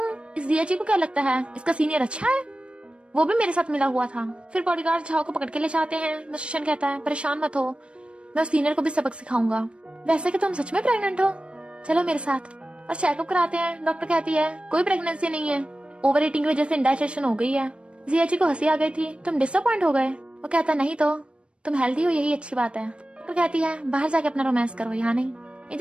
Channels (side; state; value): left; late; 0.058 ms